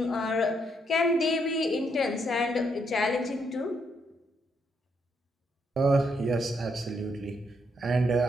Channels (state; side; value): normal; both; correlation 0.75